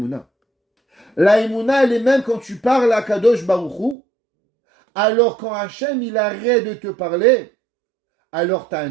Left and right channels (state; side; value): drops out; left; at 4.0 s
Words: La Emouna, elle est même quand tu parles à Kadosh Baruch Hu. Alors quand Hachem, il arrête de te parler, alors tu as un